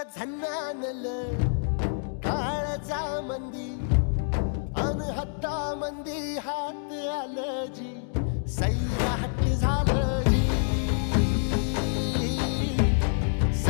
झन्नानल काळजा मंदी अन हत्ता मंदी हात आलं जी सैराट झालं जी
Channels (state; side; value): silent; right; digital silence